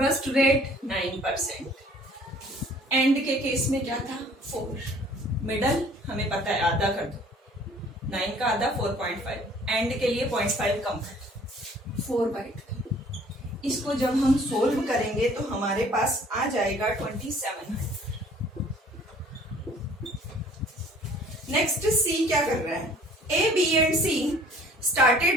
rate 9%. End के case में क्या था, 4. मिडल हमें पता है, आधा कर दो, 9 का आधा 4.5, एंड के लिए 0.5 कम कर 4/2. इसको जब हम सोल्व करेंगे तो हमारे पास आ जाएगा 2700. नेक्स्ट सी क्या कर रहा है, A, B and C started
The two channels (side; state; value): both; normal; correlation 0.54